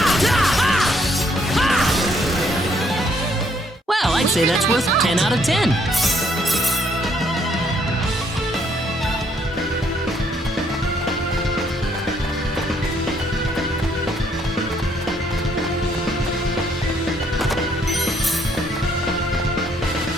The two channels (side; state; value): both; normal; correlation 0.68